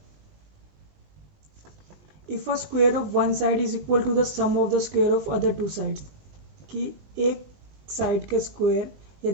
if a square of one side is equal to the sum of the square of other two sides, कि एक साइड के स्क्वायर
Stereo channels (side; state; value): left; late; 20 ms